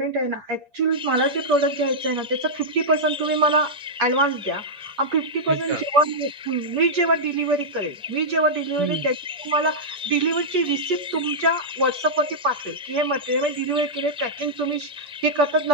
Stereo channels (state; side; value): normal; both; correlation -0.09